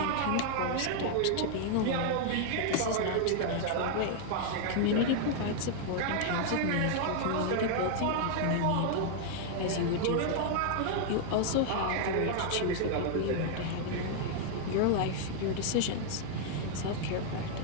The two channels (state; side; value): different; both; correlation 0.00